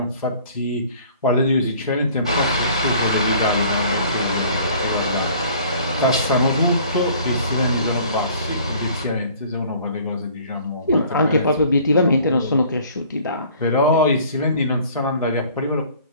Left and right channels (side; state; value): both; inverted; correlation -0.52